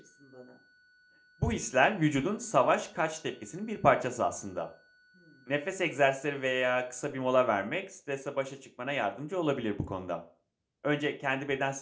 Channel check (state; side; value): identical; both; correlation 1.00